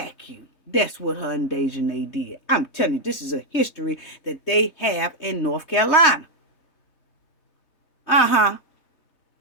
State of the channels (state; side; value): late; right; 3.2 ms